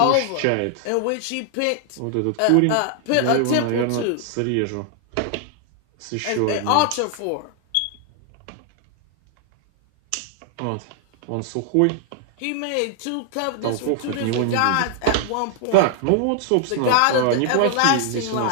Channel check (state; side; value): different; both; correlation 0.00